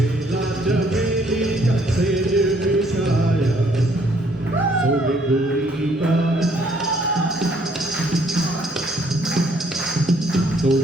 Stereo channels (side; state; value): both; normal; correlation 0.65